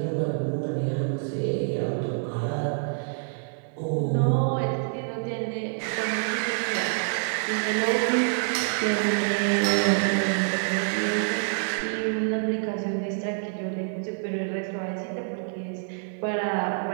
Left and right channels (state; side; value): silent; left; digital silence